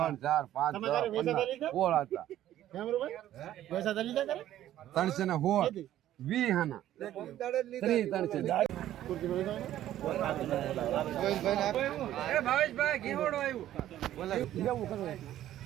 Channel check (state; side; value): quieter; left; 12.7 dB